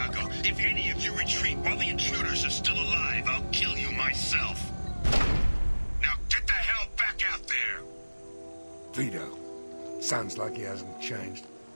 If any of you retreat while the intruders are still alive, I'll kill you myself. Now get the hell back out there! Vito. Sounds like he hasn't changed.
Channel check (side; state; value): both; inverted; correlation -1.00